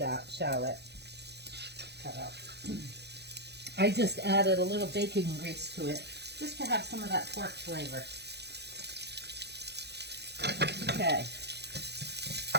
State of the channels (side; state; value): left; late; 0.49 ms